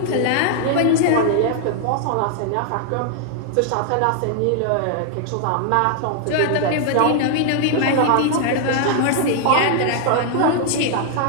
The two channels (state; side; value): different; both; correlation 0.00